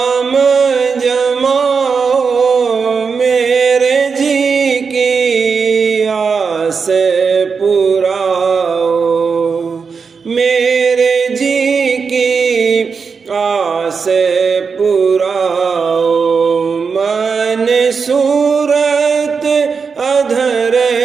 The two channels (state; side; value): quieter; left; 5.4 dB